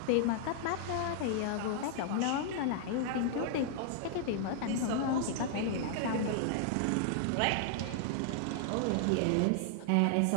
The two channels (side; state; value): both; different; correlation -0.01